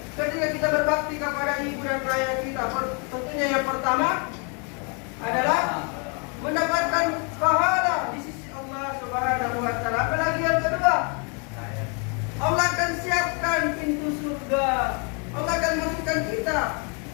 ketika kita berbakti kepada ibu dan ayah kita? Tentunya yang pertama adalah mendapatkan pahala di sisi Allah Subhanahu Wa Taala. Apalagi yang kedua, Allah akan siapkan pintu surga. Allah akan masukkan kita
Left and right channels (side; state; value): right; quieter; 36.7 dB